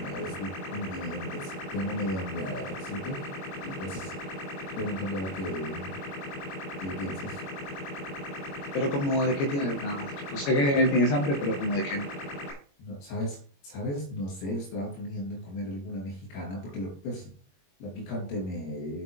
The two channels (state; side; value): late; right; 21 ms